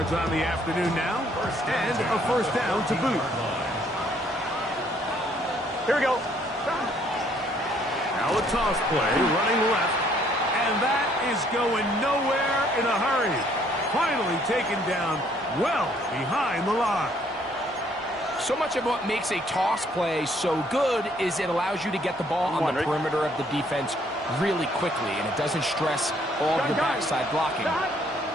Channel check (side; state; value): both; normal; correlation 0.65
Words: on the afternoon now, and a first down to boot. Here we go. Now a toss play, running left, and that is going nowhere in a hurry. Finally taken down well behind the line. So much of what makes a toss play so good is it allows you to get the ball on the perimeter of the defense really quickly, and it doesn't stress all of the backside blocking.